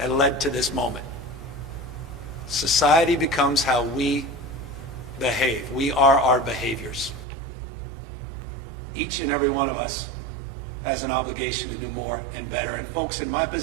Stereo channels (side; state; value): left; drops out; at 7.2 s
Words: led to this moment. Society becomes how we behave. We are our behaviors. Each and every one of us has an obligation to do more and better. And folks, in my